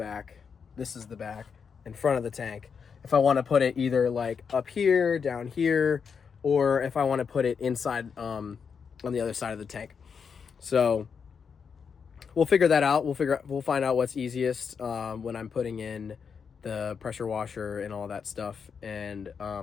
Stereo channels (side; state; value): right; quieter; 6.3 dB